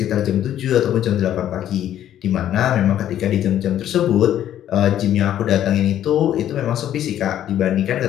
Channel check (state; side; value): quieter; right; 11.3 dB